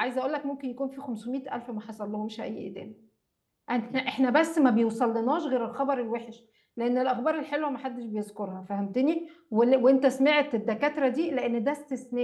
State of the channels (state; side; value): identical; both; correlation 1.00